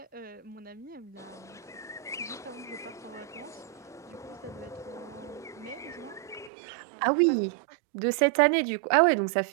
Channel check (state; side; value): drops out; left; at 6.5 s